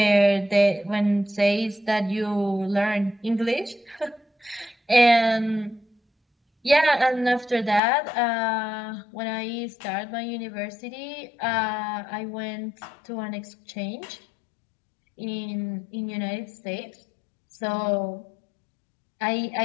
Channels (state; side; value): drops out; right; at 7.8 s